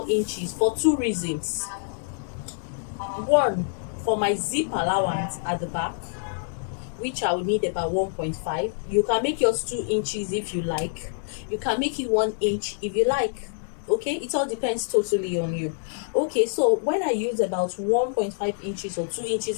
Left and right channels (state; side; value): silent; right; digital silence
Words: inches for 2 reasons. One, for my zip allowance at the back, which I will need about 1.5. You can make yours 2 inches if you like. You can make it 1 inch if you like. Okay, it all depends totally on you. Okay, so when I use about 1.5 inches or 2 inches